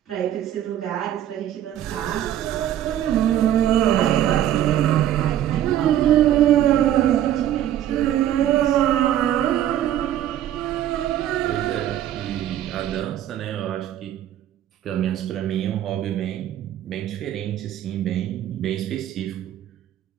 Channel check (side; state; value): left; quieter; 11.6 dB